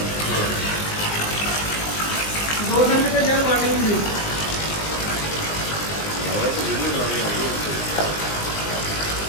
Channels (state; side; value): late; right; 19 ms